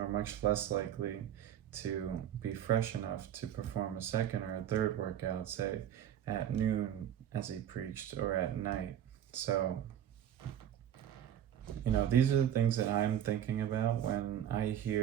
less likely to be fresh enough to perform a second or a third workout, say at noon as he preached, or at night. So, these are the things that I'm thinking about when I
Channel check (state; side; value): quieter; left; 10.3 dB